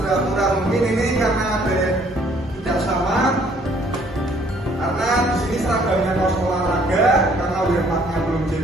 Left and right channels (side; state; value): both; normal; correlation 0.62